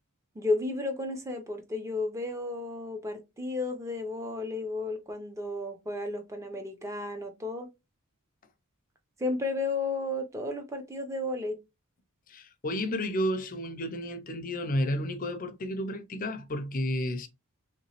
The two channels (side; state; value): both; normal; correlation 0.53